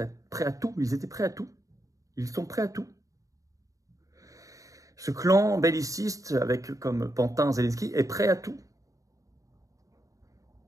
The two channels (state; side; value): late; left; 0.16 ms